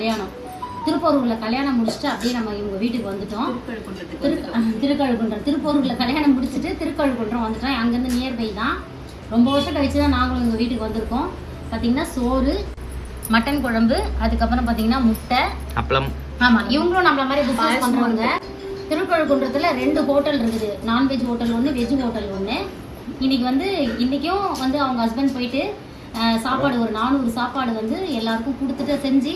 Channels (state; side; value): identical; both; correlation 1.00